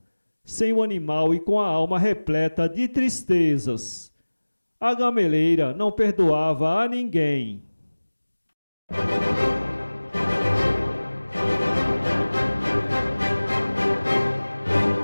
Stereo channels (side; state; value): both; inverted; correlation -1.00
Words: sem o animal e com a alma repleta de tristezas. A gameleira não perdoava a ninguém.